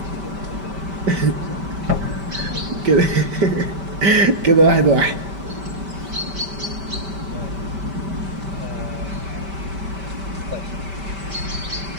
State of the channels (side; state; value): left; late; 5.1 ms